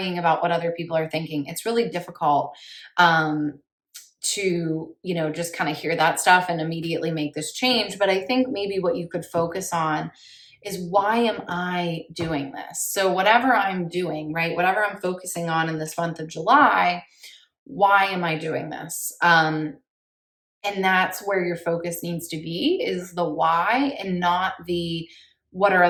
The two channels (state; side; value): identical; both; correlation 1.00